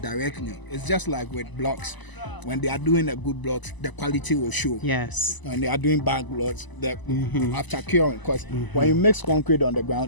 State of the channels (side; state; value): right; late; 1.0 ms